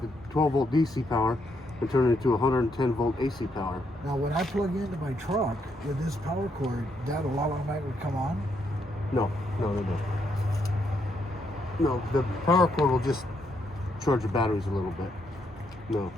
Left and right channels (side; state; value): both; normal; correlation 0.76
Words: the 12-volt DC power and turn it into 110-volt AC power. Now, when I plug into my truck with this power cord, that automatically would come on? No. No, the power cord will just charge the batteries a little bit. No.